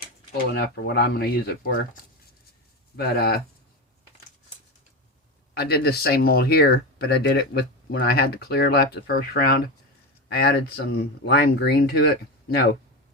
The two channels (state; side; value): normal; both; correlation 0.19